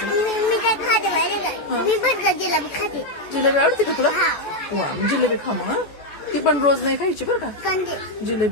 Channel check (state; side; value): late; right; 14 ms